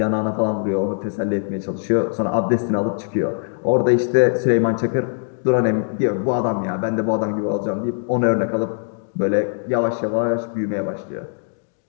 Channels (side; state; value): right; silent; 62 dB below the other